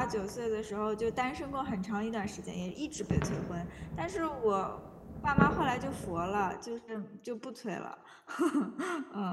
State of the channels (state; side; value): identical; both; correlation 1.00